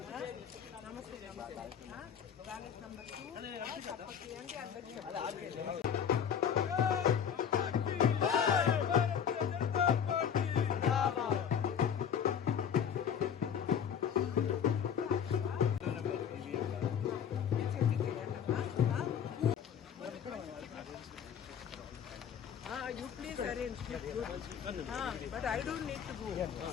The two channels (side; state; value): right; quieter; 8.0 dB